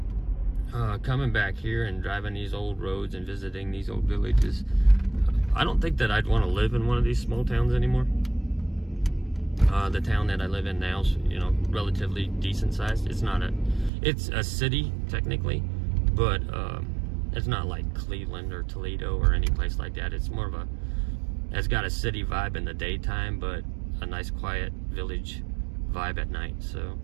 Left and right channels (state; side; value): drops out; left; at 13.9 s